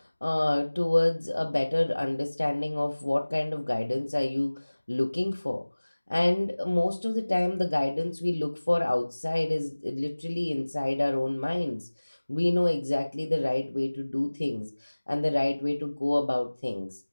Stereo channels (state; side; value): inverted; both; correlation -1.00